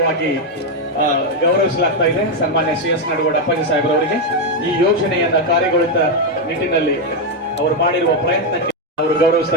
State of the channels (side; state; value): both; normal; correlation 0.04